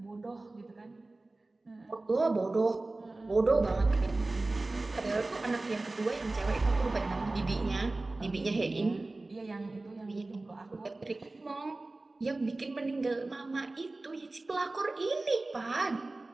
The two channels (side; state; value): left; quieter; 3.1 dB